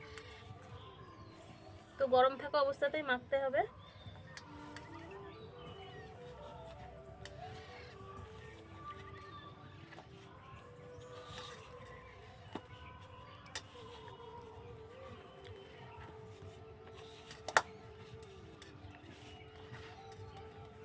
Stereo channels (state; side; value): identical; both; correlation 1.00